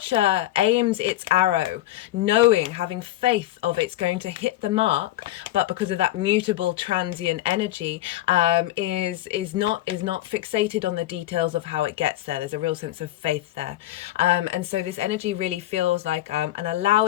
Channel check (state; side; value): quieter; right; 14.6 dB